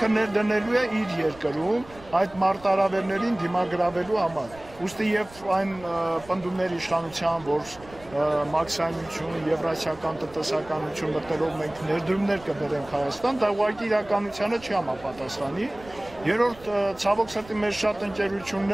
ներդնելու է իր երկրում այդ մարտահրավերներին դիմագրավելու համար։ Ուստի եւ այն պնդումների իշխանության, որ մաքսիմայություն, եվրասիական տնտեսականություն մտնելով մենք ներդրումներ կբերենք Հայաստան, դա ուղղակի իրականությանը չի համապատասխանի։ Երրորդ, ցավոք սրտի մեր շատ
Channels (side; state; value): right; noise; rumble, 21 dB below the sound